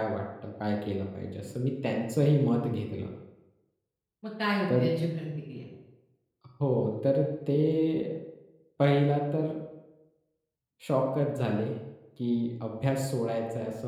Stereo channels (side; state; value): both; identical; correlation 1.00